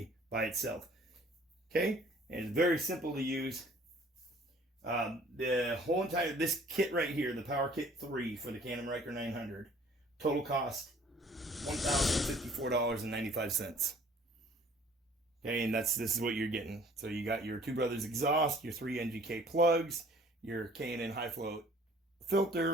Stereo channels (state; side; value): normal; both; correlation 0.54